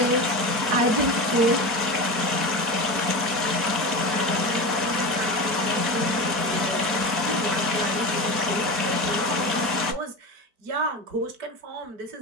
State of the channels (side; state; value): left; late; 4.6 ms